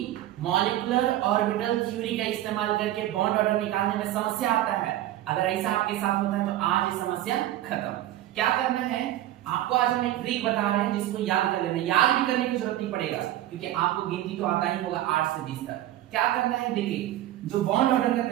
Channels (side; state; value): left; quieter; 13.9 dB